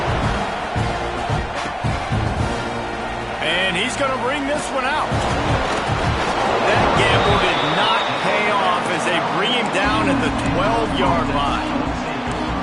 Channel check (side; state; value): both; identical; correlation 1.00